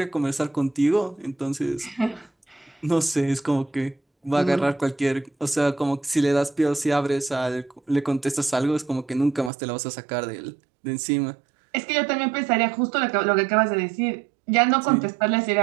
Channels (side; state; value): left; drops out; at 9.5 s